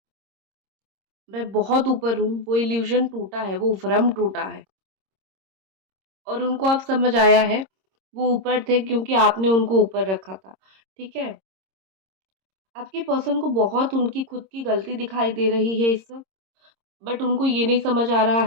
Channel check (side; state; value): left; late; 26 ms